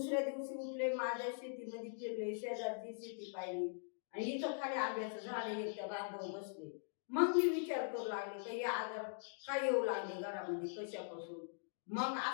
दिवशी उठले, माझ्या शेतीमध्ये फिरले, शेजारची शेती पाहिली, आणि इथं खाली आंब्याचं झाड एकट्या बांधव बसले. मग मी विचार करू लागले का हे आजार काय येऊ लागले घरामध्ये, कशापासून. मग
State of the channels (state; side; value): silent; right; digital silence